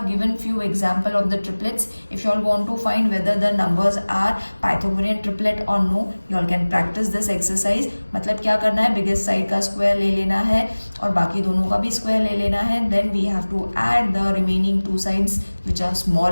given few example of the triplets. If you all want to find whether the numbers are Pythagorean triplet or no, you all can practice this exercise. मतलब क्या करना है, biggest side का square ले लेना है और बाकी दोनों का भी स्क्वायर ले लेना है. Then we have to add the remaining two sides which are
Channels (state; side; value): inverted; both; correlation -1.00